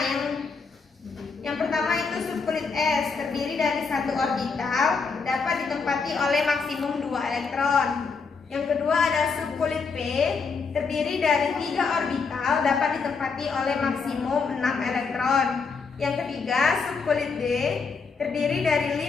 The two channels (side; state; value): right; quieter; 4.9 dB